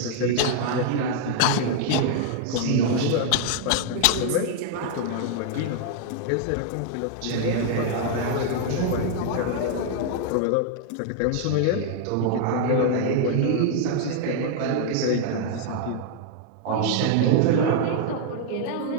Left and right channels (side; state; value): both; different; correlation 0.00